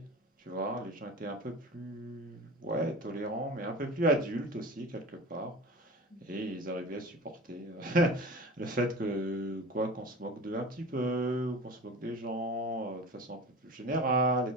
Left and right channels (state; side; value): normal; both; correlation 0.34